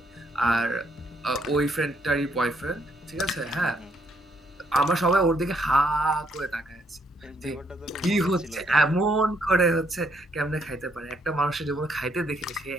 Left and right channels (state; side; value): normal; both; correlation 0.71